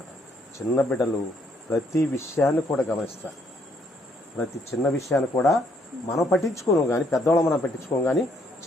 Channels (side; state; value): both; normal; correlation 0.69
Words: చిన్న బిడ్డలు ప్రతి విషయాన్ని కూడా గమనిస్తారు. ప్రతి చిన్న విషయాన్ని కూడా మనం పట్టించుకోను కానీ, పెద్దవాళ్ళం మనం పట్టించుకోం కానీ,